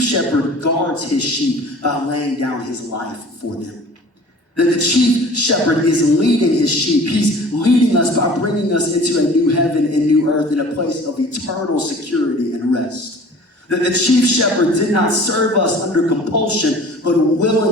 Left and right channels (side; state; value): both; normal; correlation 0.46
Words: shepherd guards his sheep by laying down his life for them. That the chief shepherd is leading his sheep. He's leading us by bringing us into a new heaven and new earth in a place of eternal security and rest. That the chief shepherd did not serve us under compulsion, but